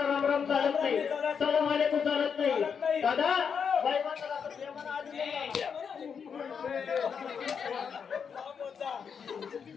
राम राम चालत नाही सलाम वालेकुम चालत नाही दादा बाई माणसाला आपण प्रेमानं आधी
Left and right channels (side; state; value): right; quieter; 6.7 dB